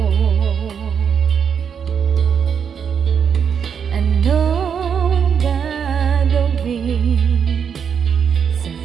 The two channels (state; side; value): quieter; left; 7.2 dB